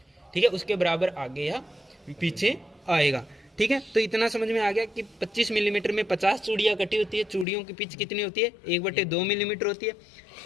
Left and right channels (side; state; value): right; drops out; at 7.5 s